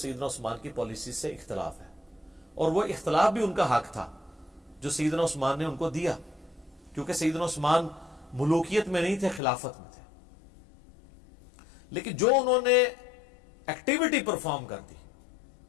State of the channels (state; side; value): drops out; right; at 9.4 s